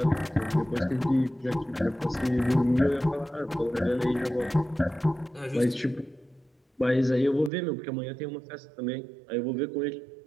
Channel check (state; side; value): drops out; left; at 7.5 s